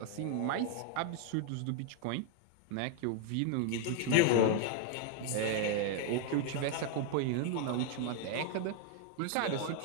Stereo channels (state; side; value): different; both; correlation 0.00